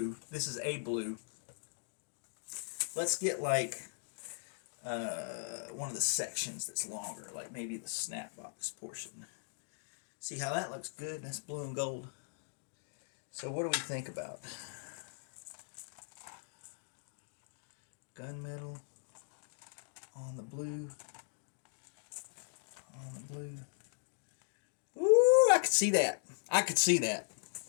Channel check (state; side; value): silent; right; digital silence